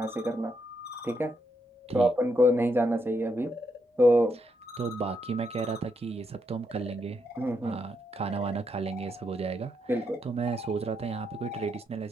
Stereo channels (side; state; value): both; normal; correlation 0.79